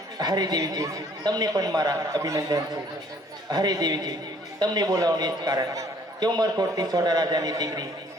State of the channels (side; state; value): both; normal; correlation 0.59